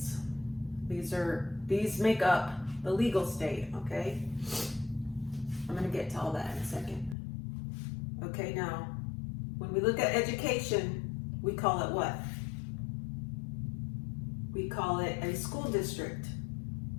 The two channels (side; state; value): right; drops out; at 7.2 s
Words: These make up the legal state, okay? I'm going to get to all that in a second. Okay, now, when we look at education, we call it what? We call it a school district,